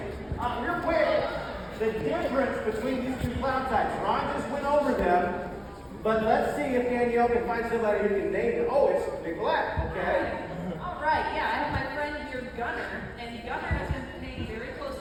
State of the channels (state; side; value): identical; both; correlation 1.00